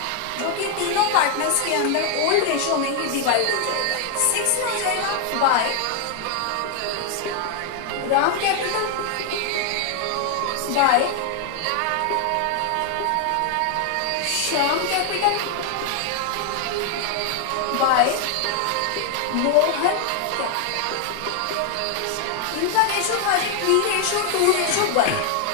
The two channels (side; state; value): both; different; correlation 0.00